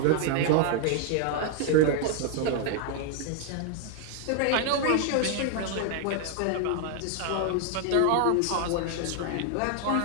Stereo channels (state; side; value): different; both; correlation 0.00